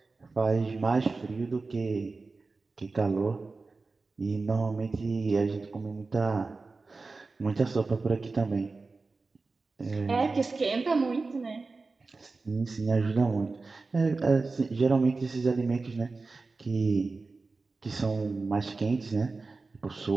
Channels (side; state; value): left; quieter; 3.9 dB